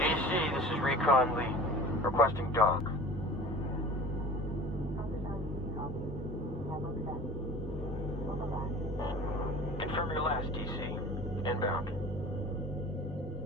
this is Recon Lee. Requesting dock. Confirm your last, DC. Inbound.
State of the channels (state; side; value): normal; both; correlation 0.41